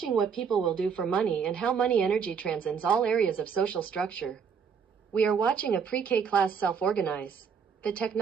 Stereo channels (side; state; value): left; quieter; 6.5 dB